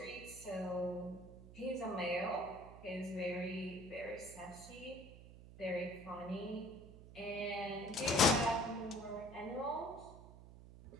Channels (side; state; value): right; noise; hum, 16 dB below the sound